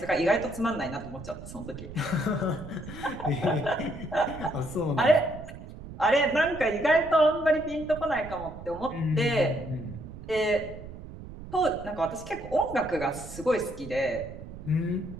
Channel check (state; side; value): noise; right; rumble, 13 dB below the sound